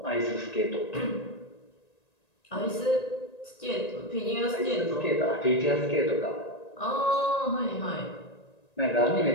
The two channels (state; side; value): late; right; 1.9 ms